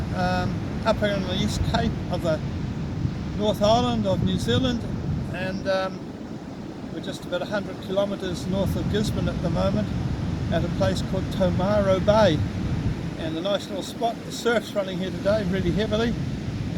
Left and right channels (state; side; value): identical; both; correlation 1.00